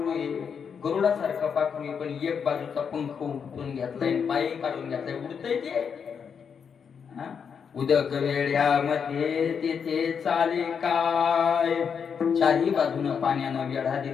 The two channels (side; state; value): right; quieter; 6.8 dB